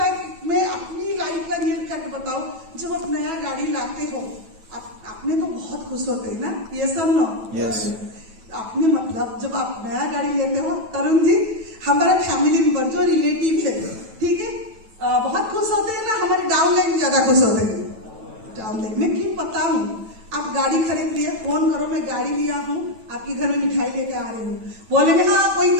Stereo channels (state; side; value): late; left; 9.1 ms